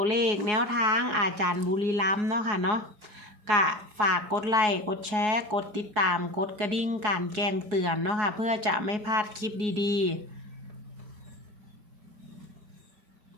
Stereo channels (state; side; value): late; left; 4.7 ms